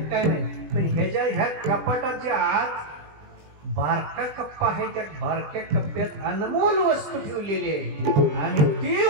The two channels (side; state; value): left; late; 20 ms